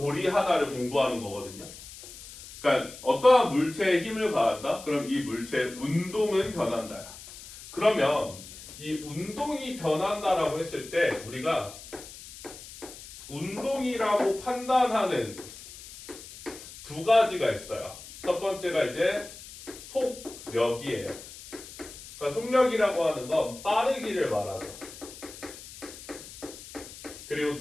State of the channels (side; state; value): left; noise; hiss, 15 dB below the sound